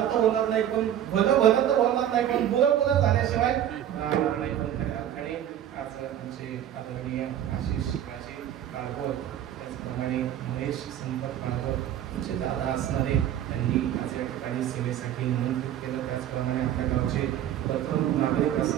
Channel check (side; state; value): left; quieter; 10.9 dB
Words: तर होणार नाही, पण भलं तर होणार नाही, पण बुरं झाल्याशिवाय राहणार नाही. पण खऱ्या अर्थाने आज आमचे आदरणीय आशिष शिवाजी काळभोर, त्याचप्रमाणे महेश संपत काळभोर तुमचे दादा असणारे, त्यांनी आज या ठिकाणी सेवेसाठी निमंत्रित केलं. त्याचप्रमाणे आपल्या गावचे प्रथम नागरिक